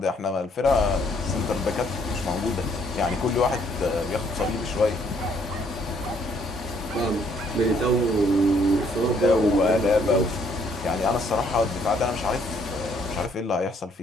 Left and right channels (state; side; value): normal; both; correlation 0.66